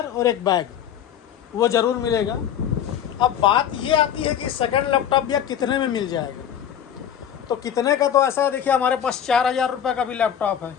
और एक बैग वो ज़रूर मिलेगा। अब बात ये आती है कि सेकंड लैपटॉप या कितने में मिल जाएगा, तो कितने का तो ऐसा है, देखिए हमारे पास 4,000 रुपये का भी लैपटॉप है।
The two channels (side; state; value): right; quieter; 9.4 dB